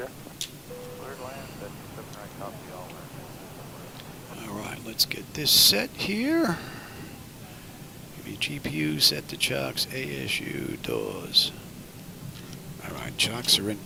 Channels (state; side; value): identical; both; correlation 1.00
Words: Cleared land, 7 right, copy all land. Alright, let's get this set here. Give me GPU, set the chocks, ASU, doors. Alright, chocks are in